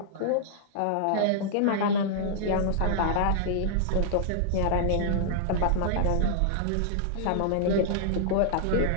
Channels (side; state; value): both; different; correlation -0.01